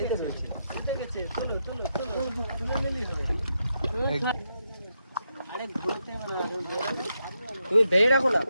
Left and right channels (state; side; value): inverted; both; correlation -0.83